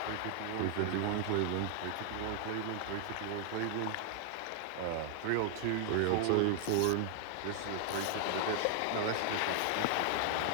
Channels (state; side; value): different; both; correlation 0.00